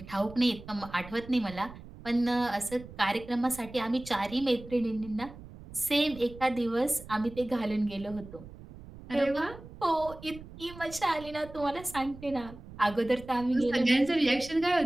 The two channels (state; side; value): noise; right; rumble, 16 dB below the sound